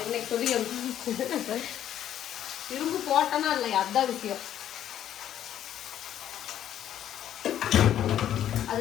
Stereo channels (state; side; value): quieter; right; 10.9 dB